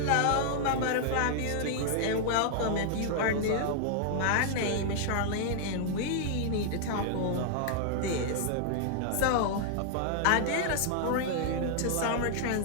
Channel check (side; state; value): both; different; correlation -0.01